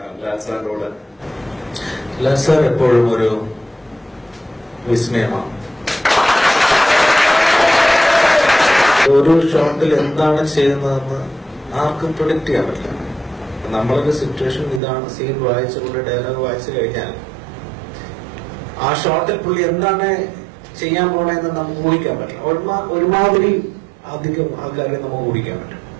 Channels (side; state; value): left; drops out; at 14.8 s